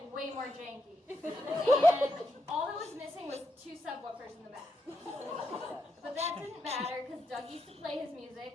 way more janky. And all that was missing was 2 subwoofers in the back. But that didn't matter because Doug used to play his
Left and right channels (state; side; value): normal; both; correlation 0.82